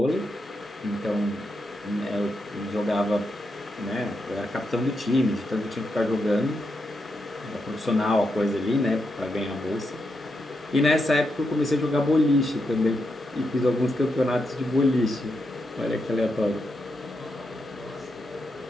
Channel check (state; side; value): normal; both; correlation 0.84